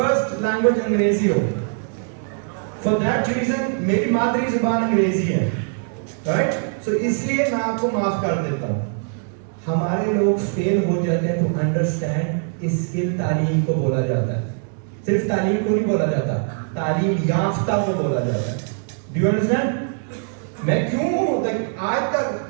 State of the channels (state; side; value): silent; left; 56 dB below the other